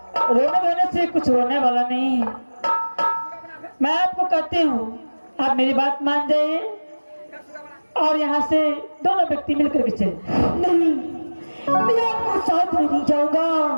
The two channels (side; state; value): both; inverted; correlation -1.00